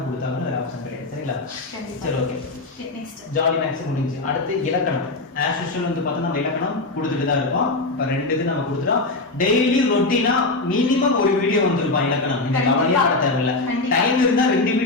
கொடுத்தாலும் வேற ஆப்ஷன் கிடையாது. சரிங்களா? சரி, ஓகே. ஜாலி மேக்ஸ் முடிஞ்சு அடுத்து இலக்கணம். ஆஸ் யூஷுவல் வந்து பார்த்தா நம்ம இலக்கணம் கொடுத்துட்டு தான் இருக்கோம். இப்போ 2 இது நம்ம கொடுத்துட்டோம். டெய்லி ரொட்டீனா மினிமம் ஒரு வீடியோ வந்துருப்பான் இலக்கணம். நீங்க கவலையே பட தேவையில்லை. டைம் இருந்தா 2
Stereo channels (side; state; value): right; quieter; 3.2 dB